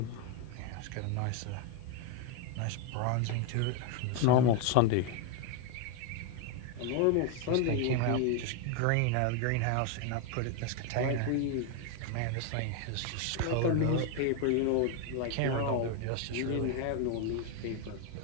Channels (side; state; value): both; different; correlation 0.01